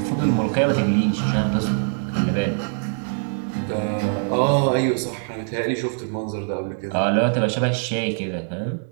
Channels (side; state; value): left; silent; digital silence